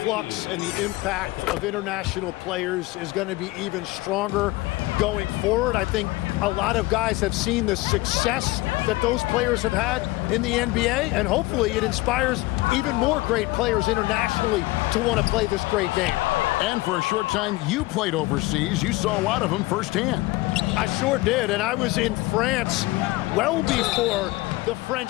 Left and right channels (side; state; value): right; quieter; 20.3 dB